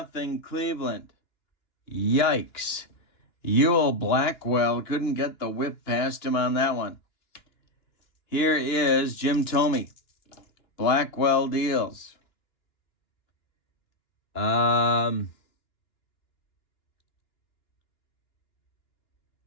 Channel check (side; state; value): right; late; 2.9 ms